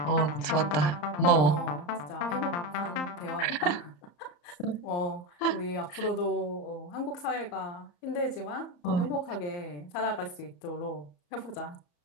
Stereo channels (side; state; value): right; late; 33 ms